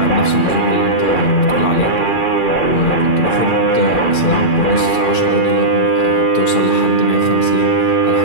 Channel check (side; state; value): right; late; 2.4 ms